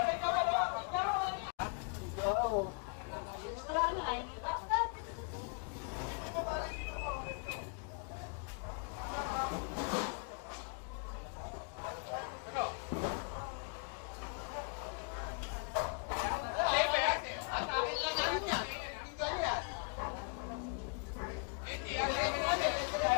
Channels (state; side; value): quieter; right; 35.6 dB